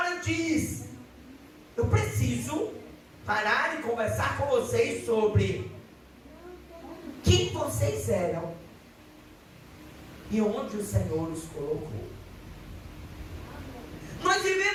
diz: eu preciso parar e conversar com vocês sobre quem vocês eram e onde o Senhor os colocou. Nós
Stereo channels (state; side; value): identical; both; correlation 1.00